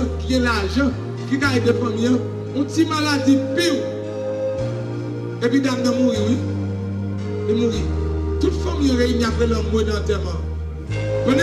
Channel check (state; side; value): identical; both; correlation 1.00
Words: qui a l'argent, qui a des familles, un petit maladie pire. Et puis dame de mourir, oui. De mourir. Toute famille réunie après leur mot d'enterrement. On